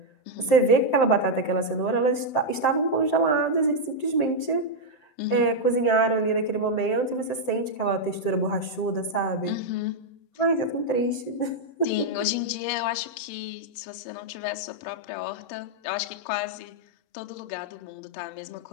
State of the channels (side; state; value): right; late; 7.7 ms